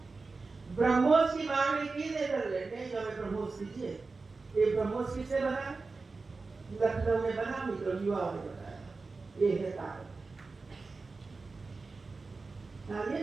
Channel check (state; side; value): quieter; left; 4.0 dB